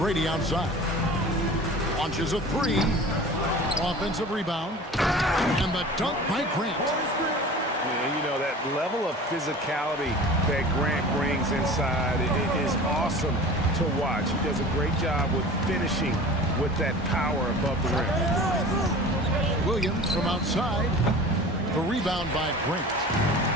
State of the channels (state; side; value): normal; both; correlation 0.39